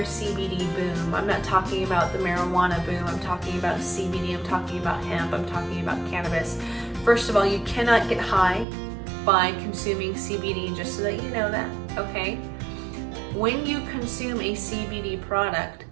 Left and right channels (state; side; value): drops out; left; at 8.7 s